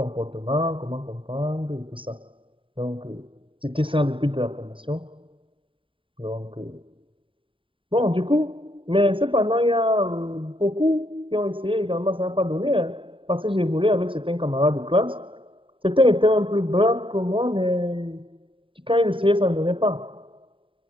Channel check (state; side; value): late; left; 0.25 ms